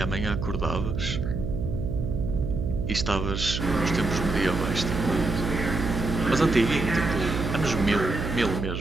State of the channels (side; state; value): right; noise; hum, 3 dB below the sound